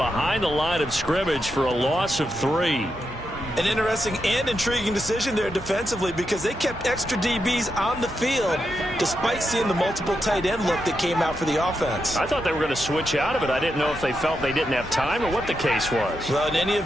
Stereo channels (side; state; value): both; normal; correlation 0.85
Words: the line of scrimmage for a loss of 3. An interesting and intriguing decision there defensively, because they kept extra DBs on the field despite seeing the multiple tight end look that came out for the offense. I thought they were going to switch out of it. I didn't know if they felt they didn't have time or what the case was. Well, in any